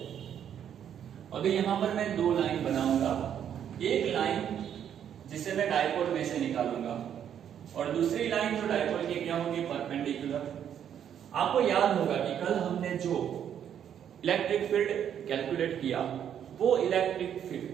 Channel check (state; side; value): quieter; left; 9.2 dB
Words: अभी यहाँ पर मैं दो लाइन बनाऊंगा, एक लाइन जिसे मैं डायपोल में से निकालूंगा और दूसरी लाइन जो डायपोल की क्या होगी, परपेंडिकुलर। आपको याद होगा कि कल हमने जो इलेक्ट्रिक फील्ड कैलकुलेट किया वो इलेक्ट्रिक